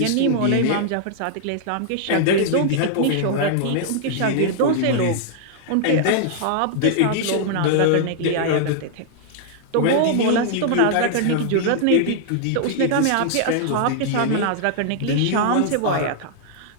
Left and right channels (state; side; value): different; both; correlation -0.01